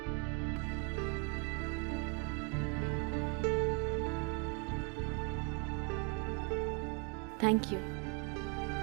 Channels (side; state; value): left; quieter; 32.3 dB